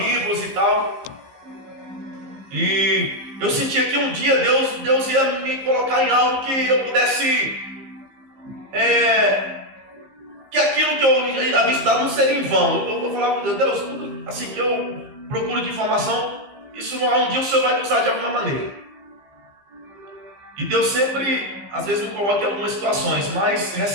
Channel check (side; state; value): left; late; 15 ms